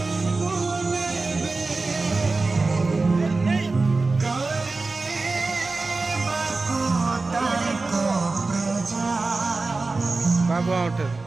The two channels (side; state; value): left; quieter; 3.6 dB